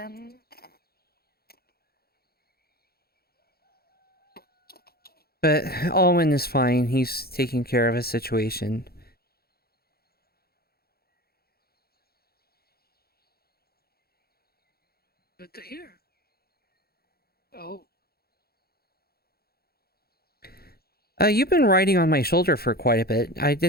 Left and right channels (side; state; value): right; late; 0.45 ms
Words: But Alwyn is fine. He's taking care of his situation. Good to hear. Oh. You've been riding on my shoulder for quite a bit. I